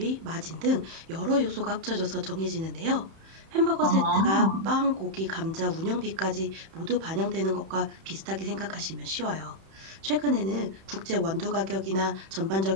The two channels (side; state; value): left; late; 31 ms